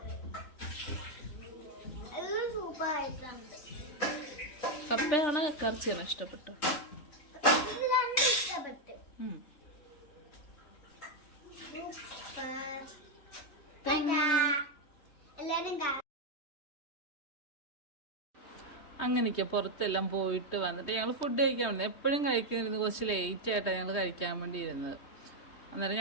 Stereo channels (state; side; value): late; right; 3.1 ms